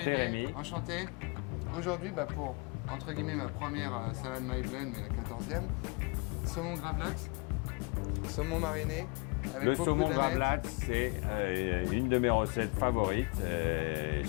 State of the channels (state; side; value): quieter; right; 30.4 dB